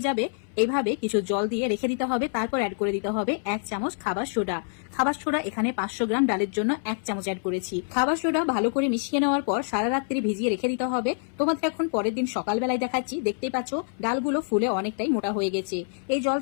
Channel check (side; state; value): right; silent; 59 dB below the other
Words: যাবে এইভাবে কিছু জল দিয়ে রেখে দিতে হবে, তারপর অ্যাড করে দিতে হবে 1 চামচ খাবার সোডা। খাবার সোডা এখানে 500 গ্রাম ডালের জন্য 1 চামচ অ্যাড করেছি। খাবার সোডা ভালো করে মিশিয়ে নেওয়ার পর সারা রাত্রি ভিজিয়ে রেখে দিতে হবে। তোমাদের এখন পরের দিন সকালবেলায় দেখাচ্ছি। দেখতেই পাচ্ছ ডালগুলো ফুলে অনেকটাই মোটা হয়ে গেছে। এই জল